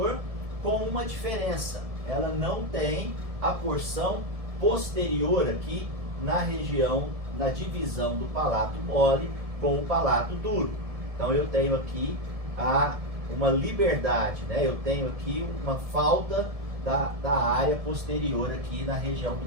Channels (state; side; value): late; left; 1.7 ms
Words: com uma diferença: ela não tem a porção posterior aqui na região, na divisão do palato mole com o palato duro. Então eu tenho aqui uma liberdade, né? Eu tenho aqui uma falta da área posterior aqui na região